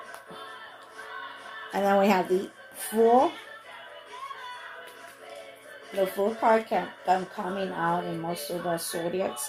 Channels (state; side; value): identical; both; correlation 1.00